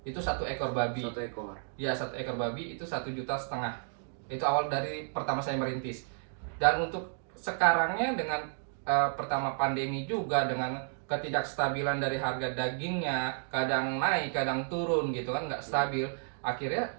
Itu 1 ekor babi. 1 ekor. Ya, 1 ekor babi itu 1,5 juta. Itu awal dari pertama saya merintis. Dan untuk sekarangnya dengan pertama pandemi juga, dengan ketidakstabilan dari harga dagingnya, kadang naik kadang turun gitu kan, nggak stabil. Akhirnya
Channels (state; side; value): silent; left; digital silence